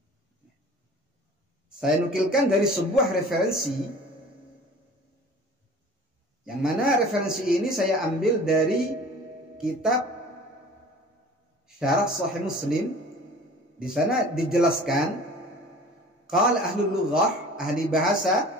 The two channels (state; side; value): normal; both; correlation 0.44